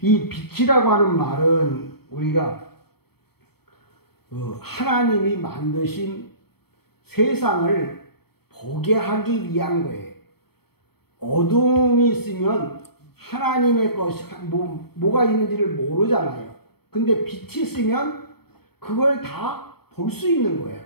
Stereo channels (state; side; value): late; right; 0.96 ms